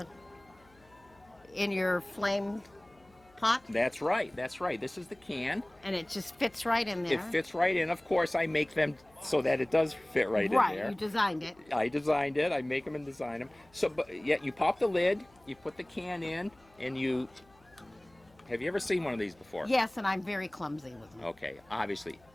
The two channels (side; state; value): left; noise; hum, 30 dB below the sound